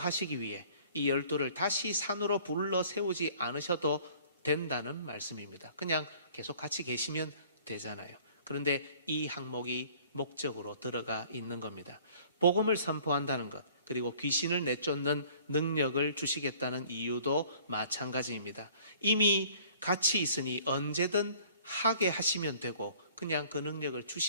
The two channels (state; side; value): inverted; both; correlation -0.53